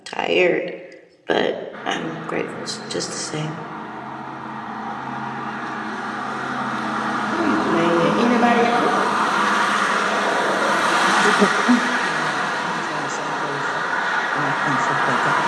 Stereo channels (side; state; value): both; identical; correlation 1.00